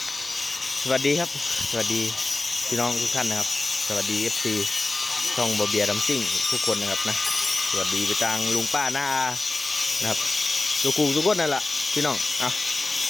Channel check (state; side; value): quieter; right; 3.2 dB